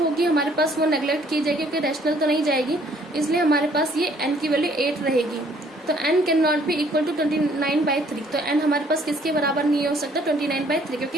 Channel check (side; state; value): both; normal; correlation 0.62